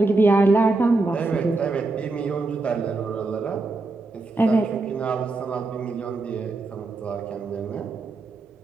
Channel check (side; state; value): left; quieter; 3.4 dB